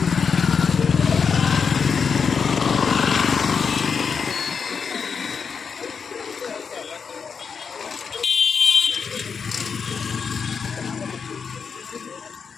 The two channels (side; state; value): right; quieter; 6.0 dB